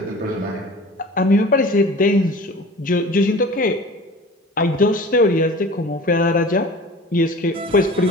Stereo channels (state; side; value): normal; both; correlation 0.41